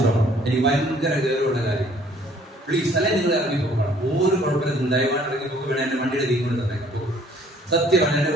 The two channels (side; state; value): both; normal; correlation 0.59